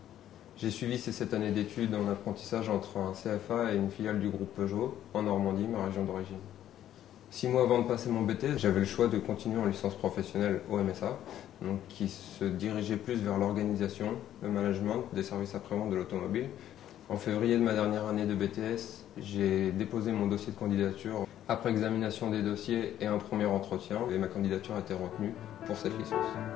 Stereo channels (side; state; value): right; quieter; 11.6 dB